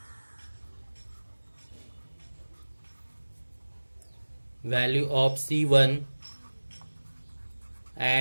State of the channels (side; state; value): both; inverted; correlation -1.00